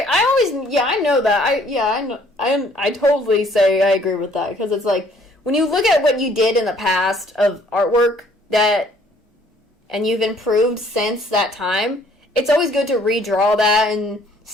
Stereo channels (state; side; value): normal; both; correlation 0.60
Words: I know that. I totally say I agree with that, because it's like, when you look at what you did in the past of artwork and you've improved since that time, it's always good to redraw that and